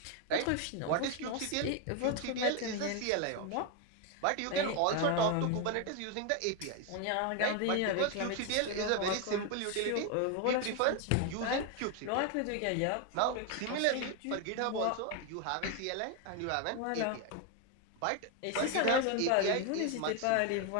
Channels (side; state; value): both; different; correlation 0.01